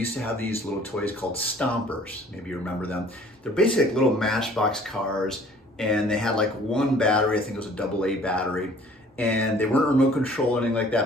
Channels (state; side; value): normal; both; correlation 0.53